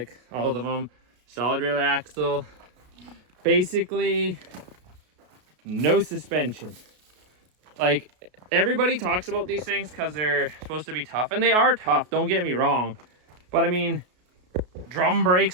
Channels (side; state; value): left; late; 33 ms